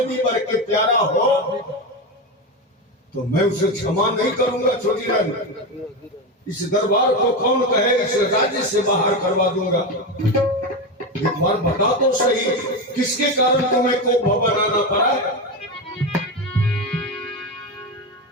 भी बढ़ के प्यारा हो तो मैं उसे क्षमा नहीं करूंगा। छोटी रानी, इस दरबार को कौन कहे इस राज्य से बाहर करवा दूंगा। एक बार बता तो सही, किसके कारण तुम्हें को बनाना पड़ा।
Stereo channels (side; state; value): both; normal; correlation 0.16